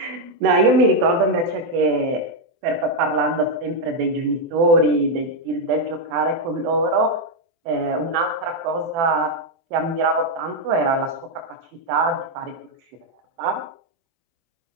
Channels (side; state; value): left; late; 24 ms